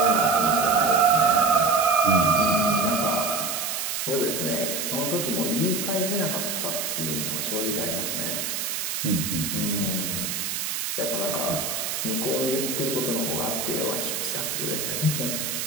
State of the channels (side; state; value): right; noise; hiss, 2 dB below the sound